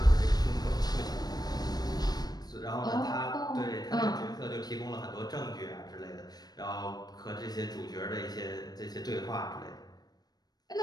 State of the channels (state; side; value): late; right; 0.19 ms